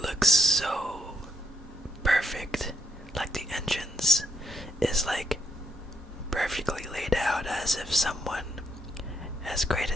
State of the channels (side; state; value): both; normal; correlation 0.75